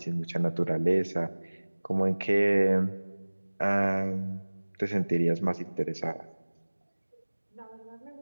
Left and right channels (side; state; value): both; inverted; correlation -1.00